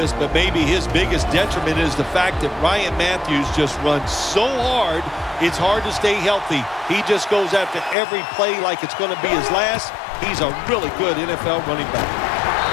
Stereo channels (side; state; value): right; drops out; at 8.0 s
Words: but maybe his biggest detriment is the fact that Ryan Matthews just runs so hard, it's hard to stay healthy. He just goes after every play like it's going to be his last. He's a really good NFL running back.